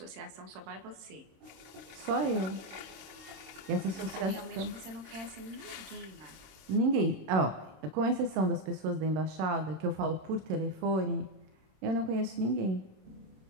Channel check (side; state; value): left; late; 27 ms